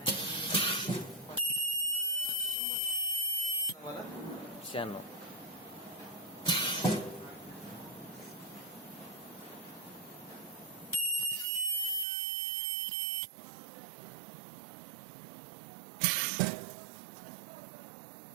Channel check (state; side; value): drops out; left; at 12.1 s